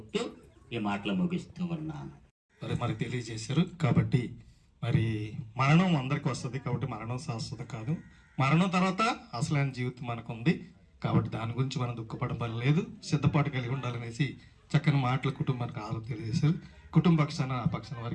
ఈ మాటలు ముగిస్తూ ఉన్నాను. మరి తెలియజేశారు. కాబట్టి మరి మరణం అందరికి వస్తుంది, కాబట్టి మరణం శాశ్వత కాదు. మరణం తర్వాత అసలైన జీవితం మనకు ఉంది. కాబట్టి దాని గురించి మనం దుఃఖపడడం పని లేదు, సిద్ధపాటు కలిగి ఉండాలనేసి చక్కని మాటలు కుటుంబానికి ఆలోచన తెలియజేశారు. కుటుంబ పక్షాన ఆ పక్షాన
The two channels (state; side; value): identical; both; correlation 1.00